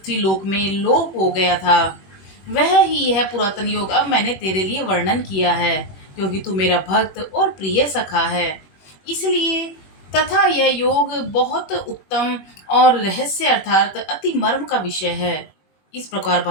लोक में लोप हो गया था। वह ही यह पुरातन योग अब मैंने तेरे लिए वर्णन किया है, क्योंकि तू मेरा भक्त और प्रिय सखा है। इसलिए तथा यह योग बहुत उत्तम और रहस्य अर्थात अति मर्म का विषय है। इस प्रकार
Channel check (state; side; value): late; right; 21 ms